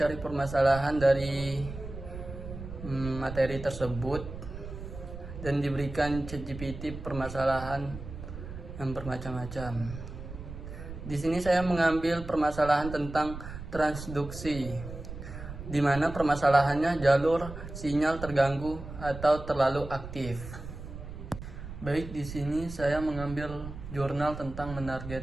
permasalahan dari materi tersebut dan diberikan ChatGPT permasalahan yang bermacam-macam. Di sini saya mengambil permasalahan tentang transduksi, di mana permasalahannya jalur sinyal terganggu atau terlalu aktif. Baik, di sini saya mengambil jurnal tentang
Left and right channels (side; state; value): right; noise; rumble, 11 dB below the sound